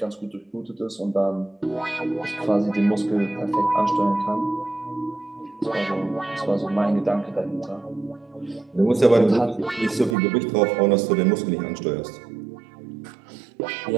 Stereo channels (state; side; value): drops out; left; at 10.2 s